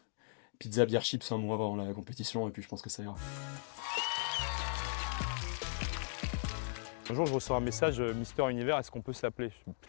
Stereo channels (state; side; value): silent; right; digital silence